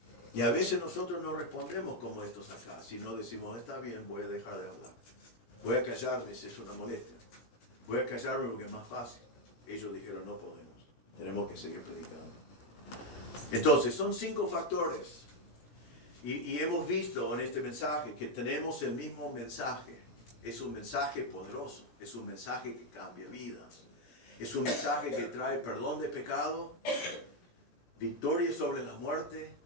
Y a veces nosotros no respondemos como estos acá, sino decimos, está bien, voy a dejar de hablar. Voy a callarme si es una molestia. Voy a callarme porque es más fácil. Ellos dijeron, no podemos. Tenemos que seguir predicando. Entonces, son 5 factores. Y hemos visto en este mensaje que tenemos el mismo mensaje. Es un mensaje poderoso, es un mensaje que cambia vidas. Es un mensaje que trae perdón de pecado, victoria sobre la muerte,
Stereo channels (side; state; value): right; late; 17 ms